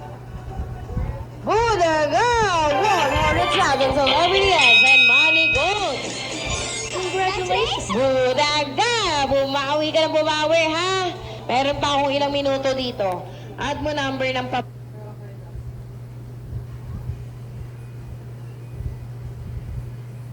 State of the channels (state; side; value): identical; both; correlation 1.00